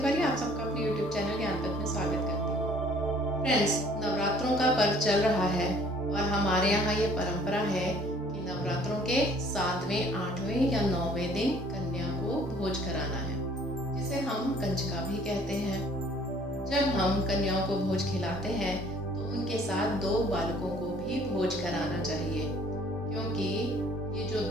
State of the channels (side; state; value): both; normal; correlation 0.56